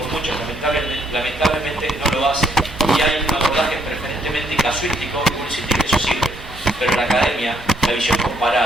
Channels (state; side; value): normal; both; correlation 0.71